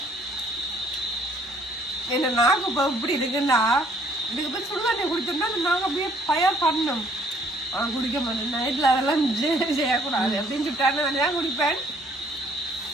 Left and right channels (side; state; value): both; normal; correlation 0.62